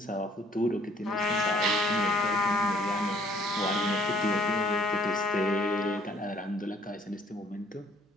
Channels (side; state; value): both; normal; correlation 0.61